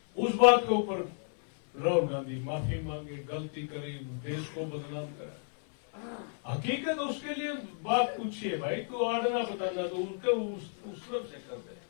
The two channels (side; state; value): right; silent; 56 dB below the other